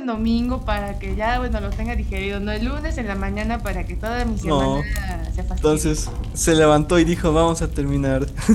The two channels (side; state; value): both; identical; correlation 1.00